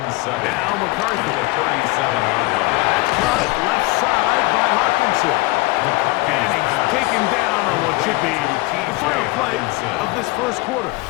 7. Now McCarthy. The 37-yard line. That's caught left side by Hawkinson. And he's taken down on what should be the final play of this 1st quarter.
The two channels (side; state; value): right; quieter; 22.4 dB